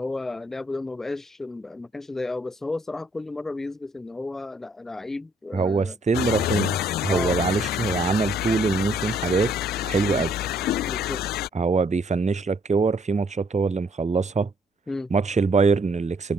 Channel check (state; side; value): normal; both; correlation 0.66